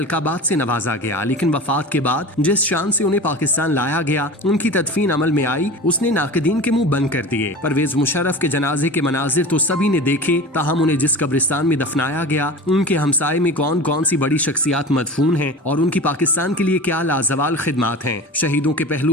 से नवाजा गया, लेकिन वफात के बाद जिस शान से उन्हें पाकिस्तान लाया गया, उनकी तदफीन अमल में आई, उसने नाक़दीन के मुंह बंद कर दिए। परवेज मुशर्रफ के जनाजे के मनाजिर तो सभी ने देखे, ताहम उन्हें जिस कब्रिस्तान में दफनाया गया, उनके हमसाये में कौन कौन सी बड़ी शख्सियात मदफून हैं और उनकी पाकिस्तान के लिए क्या लाजवाल खिदमात हैं। शहीदों के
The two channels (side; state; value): both; normal; correlation 0.34